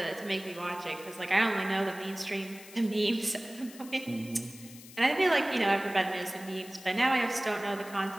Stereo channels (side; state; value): left; noise; hiss, 18 dB below the sound